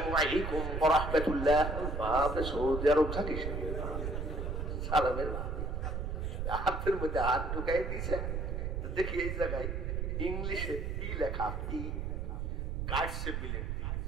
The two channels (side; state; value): right; noise; rumble, 2 dB below the sound